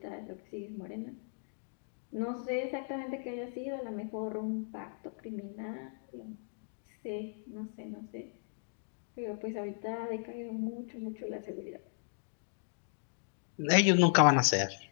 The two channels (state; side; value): silent; right; digital silence